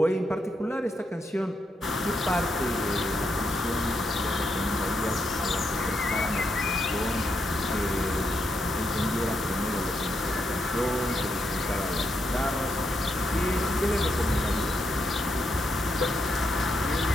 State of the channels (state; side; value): normal; both; correlation 0.80